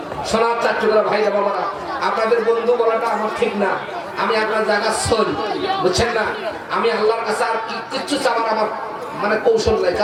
সোনার চাট্টুকরা ভাইরা বাবারা, আপনাদের বন্ধু বলাটা আমার ঠিক না, আমি আপনার জায়গা শোন, বুঝছেন না? আমি আল্লাহর কাছে আর কিচ্ছু চাওয়ার আমার মানে কৌশল নাই,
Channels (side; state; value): both; identical; correlation 1.00